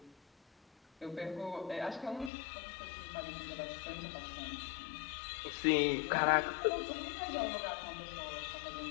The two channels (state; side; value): drops out; right; at 2.3 s